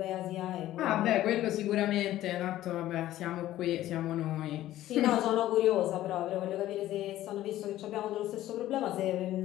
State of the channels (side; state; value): right; quieter; 14.1 dB